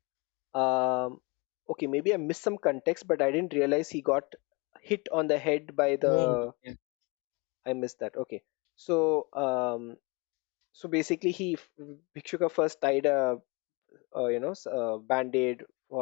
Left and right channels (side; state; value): right; quieter; 28.7 dB